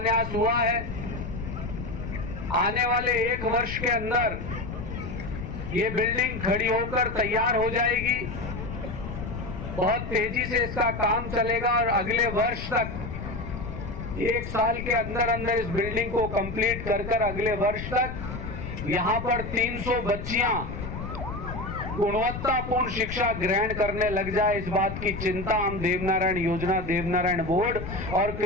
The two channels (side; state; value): left; noise; rumble, 7 dB below the sound